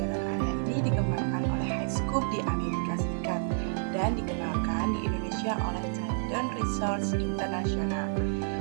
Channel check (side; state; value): left; silent; digital silence